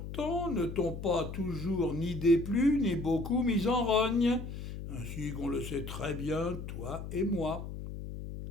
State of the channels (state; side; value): noise; left; hum, 8 dB below the sound